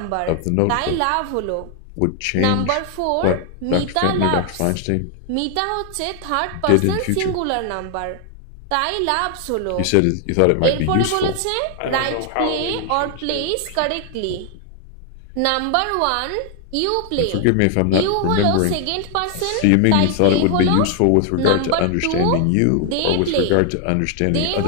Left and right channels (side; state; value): both; different; correlation 0.00